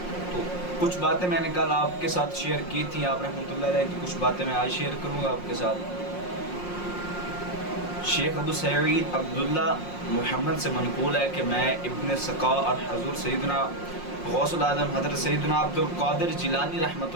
تو کچھ باتیں میں نے کل آپ کے ساتھ شیئر کی تھیں آپ رحمۃ اللہ علیہ کی، کچھ باتیں میں آج شیئر کروں گا آپ کے ساتھ۔ شیخ ابو سعید عبداللہ محمد سے منقول ہے کہ میں ابن سقا اور حضور سیدنا غوث العظم حضرت سیدنا عبد القادر جیلانی رحمۃ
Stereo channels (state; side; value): late; right; 5.6 ms